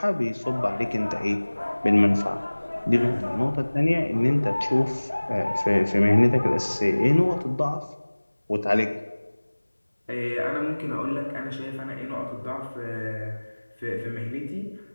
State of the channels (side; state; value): both; inverted; correlation -1.00